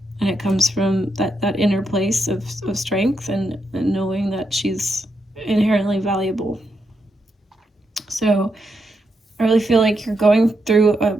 it comes from that inner place of strength and knowing that she's inherently valuable. So I really feel like you're going through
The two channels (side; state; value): both; normal; correlation 0.82